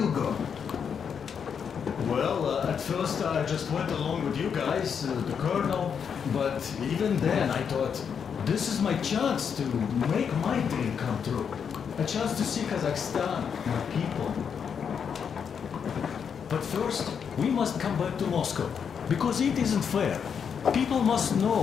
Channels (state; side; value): quieter; right; 7.1 dB